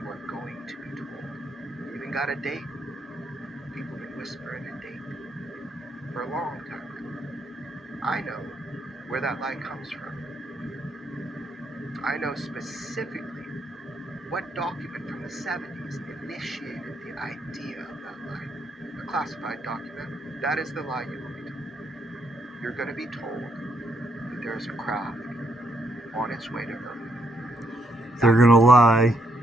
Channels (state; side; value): normal; both; correlation 0.75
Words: are going to be told. You even got a date. People have been whispering a date for a long time. I know where that lie comes from. I know specifically what document from the 70s initiated the idea of that lie. A classified document. That is the lie you will be told. You're going to be told that there is a craft on its way to Earth. They're going to lie.